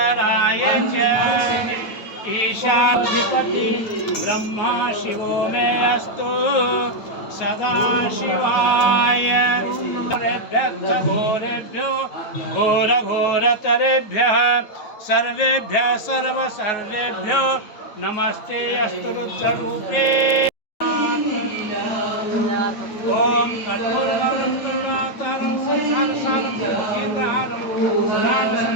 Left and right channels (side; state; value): right; late; 8.9 ms